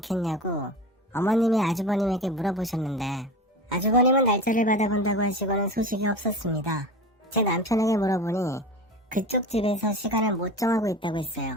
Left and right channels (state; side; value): normal; both; correlation 0.31